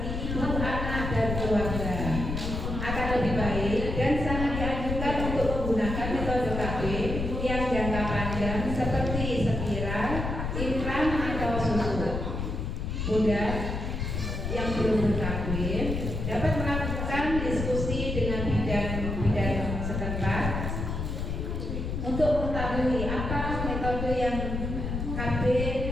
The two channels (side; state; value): left; noise; rumble, 3 dB below the sound